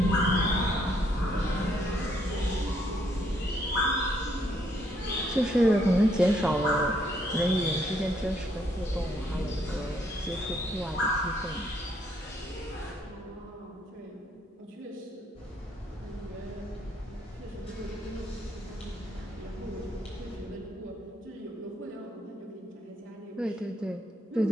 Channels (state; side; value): normal; both; correlation 0.71